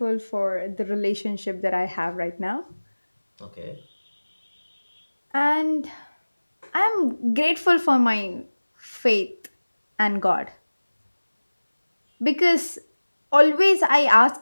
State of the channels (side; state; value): both; inverted; correlation -1.00